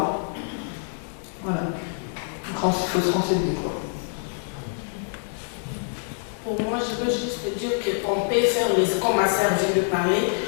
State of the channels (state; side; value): silent; right; 58 dB below the other